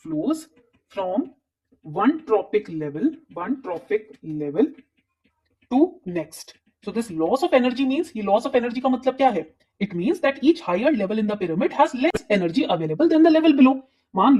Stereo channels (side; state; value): both; identical; correlation 1.00